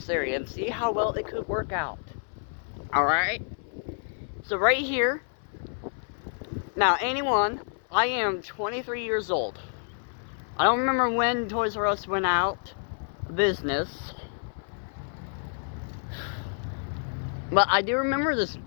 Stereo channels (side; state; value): right; silent; 59 dB below the other